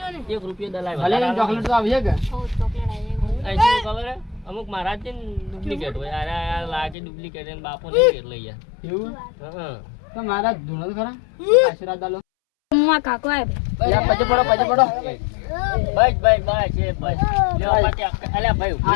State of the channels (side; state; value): right; drops out; at 7.0 s